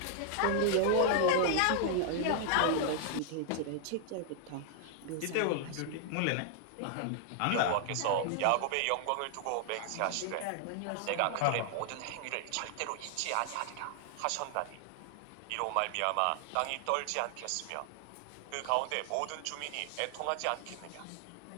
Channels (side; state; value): both; different; correlation 0.00